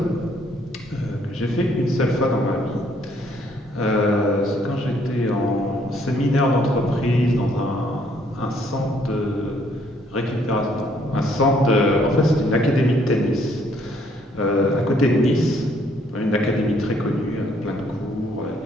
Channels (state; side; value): normal; both; correlation 0.66